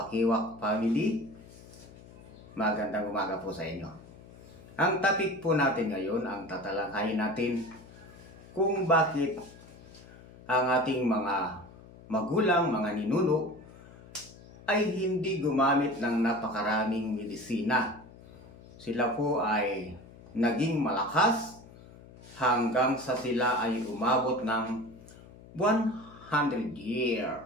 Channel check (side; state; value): left; noise; hum, 20 dB below the sound